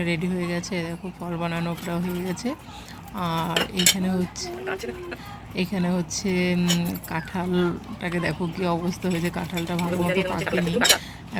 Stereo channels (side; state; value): both; identical; correlation 1.00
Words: রেডি হয়ে গেছে। দেখো ফল বানানো প্রায় হয়ে গেছে। আর এখানে হচ্ছে কাঁঠালটাকে দেখো কি অবস্থা হয়েছে, কাঁঠালটা ভালো মতো পাকেনি,